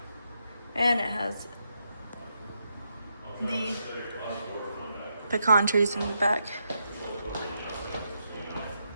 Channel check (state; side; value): inverted; both; correlation -0.82